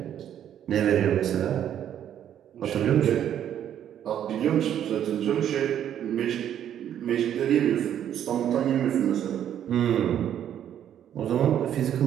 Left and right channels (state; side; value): quieter; left; 10.1 dB